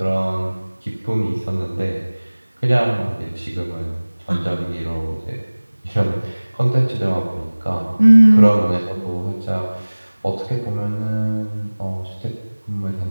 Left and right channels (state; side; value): inverted; both; correlation -1.00